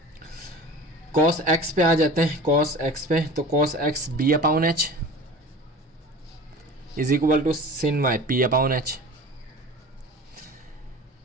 cos x पे आ जाते हैं। cos x पे तो cos x b upon h is equal to sin y p upon h।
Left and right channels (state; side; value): normal; both; correlation 0.37